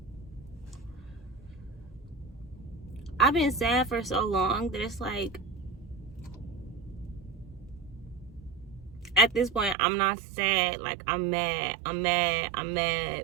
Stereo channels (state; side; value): drops out; left; at 9.8 s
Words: I've been sad for so long that it's like, at this point, I'm not sad. Like, I'm mad